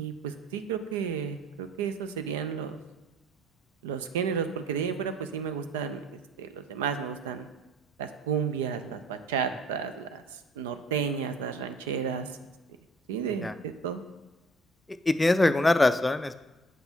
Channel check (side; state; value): both; normal; correlation 0.54